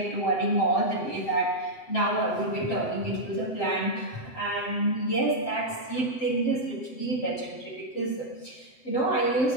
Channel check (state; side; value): late; right; 7.7 ms